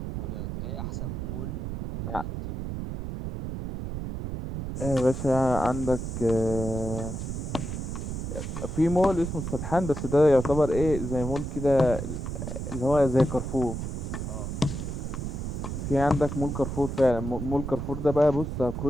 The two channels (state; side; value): noise; right; rumble, 5 dB below the sound